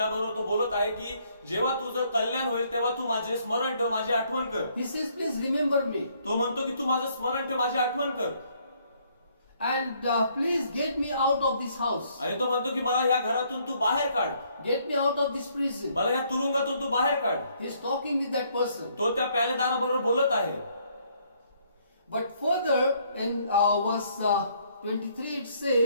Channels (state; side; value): inverted; both; correlation -0.67